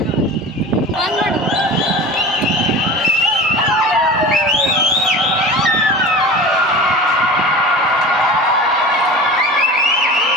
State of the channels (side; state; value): both; normal; correlation 0.34